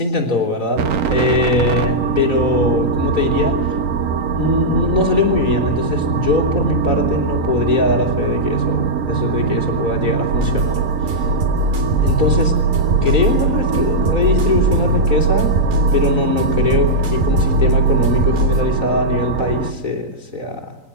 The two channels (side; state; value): left; late; 3.9 ms